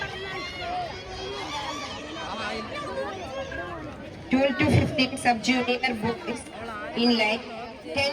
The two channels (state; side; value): identical; both; correlation 1.00